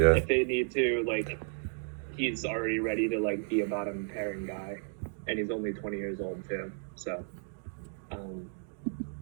If they need to, like, he's already ready to like be a bottom pairing guy, and he's only 20 years old too. So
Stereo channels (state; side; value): silent; left; digital silence